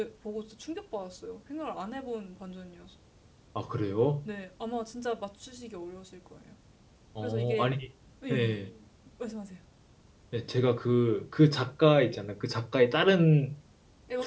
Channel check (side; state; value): both; identical; correlation 1.00